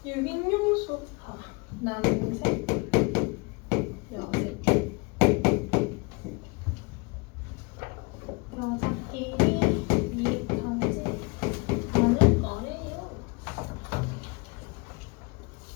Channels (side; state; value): right; quieter; 28.2 dB